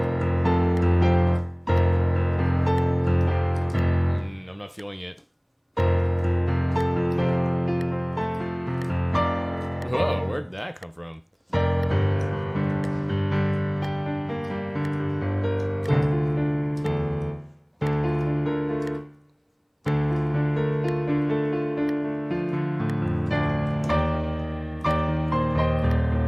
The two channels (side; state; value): both; identical; correlation 1.00